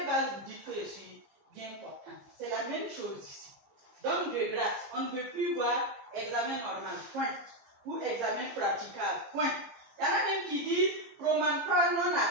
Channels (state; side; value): late; left; 15 ms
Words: base vous dites que je suis bien portant? C'est la même chose ici. Donc de grâce, on ne veut plus voir examen normal, point. Ou examen praticable, point. Il y en a même qui disent promontoire non